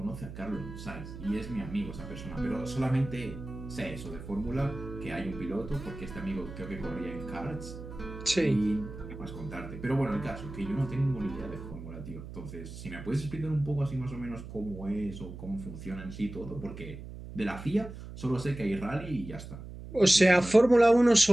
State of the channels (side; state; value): right; noise; hum, 12 dB below the sound